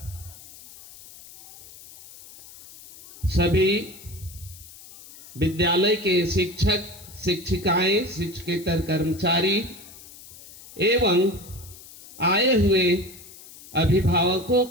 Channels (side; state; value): left; noise; hiss, 19 dB below the sound